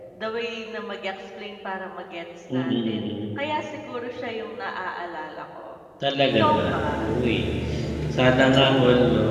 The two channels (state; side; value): identical; both; correlation 1.00